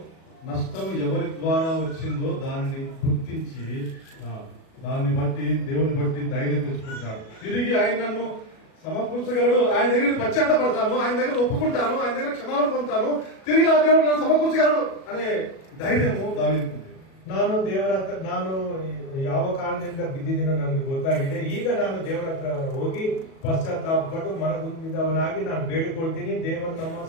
నష్టం ఎవరి ద్వారా వచ్చిందో దానిని గుర్తించి దాన్ని బట్టి దేవుని బట్టి ధైర్యం తెచ్చుకుంటున్నాడు. తిరిగి ఆయన నన్ను సమకూర్చగలడు, ఆయన దగ్గర పశ్చాత్తపడతాను, ఆయన దగ్గర ఒప్పుకుంటాను, ఆయన దగ్గర క్షమాపణ పొందుతాను, తిరిగి నా దేవుడు నన్ను సమకూర్చగలడు అనే ధైర్యము దావీదుకు. ನಾನು ದೇವರ ಹತ್ರ ನಾನು ಯಾವ ಕಾರಣದಿಂದ ಬಿದ್ದಿದ್ದೀನೋ ನನಗೆ ಗೊತ್ತಾಗಿದೆ. ಈಗ ನಾನು ದೇವರ ಹತ್ರ ಹೋಗಿ ಪಶ್ಚಾತ್ತಾಪಪಟ್ಟು ಮನಗುಂದಿದವನಾಗಿ ನಾನು ಬೇಡಿಕೊಳ್ತೀನಿ. ದೇವರು ನಮ್ಮ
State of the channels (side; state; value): right; late; 37 ms